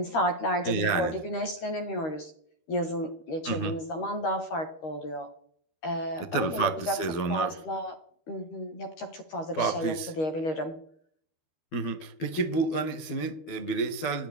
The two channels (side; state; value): right; late; 12 ms